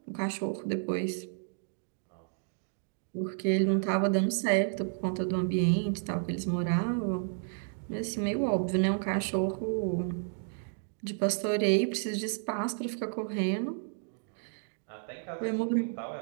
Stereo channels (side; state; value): left; silent; 57 dB below the other